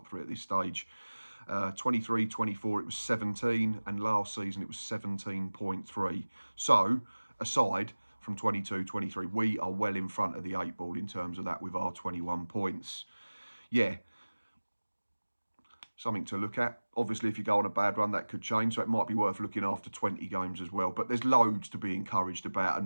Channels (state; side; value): inverted; both; correlation -1.00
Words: 3 at this stage. 23-24, it was 17. And last season, it was 17.3. So, aside from 22-23, we are well in front of the 8 ball in terms of that with our 21 points. Yeah, something to look at. Obviously, if you go on a bad run, that could change, so it might be worth looking after 20 games as well. But there's loads to be encouraged about